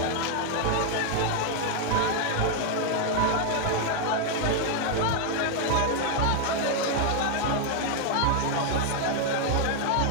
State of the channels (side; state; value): both; different; correlation 0.00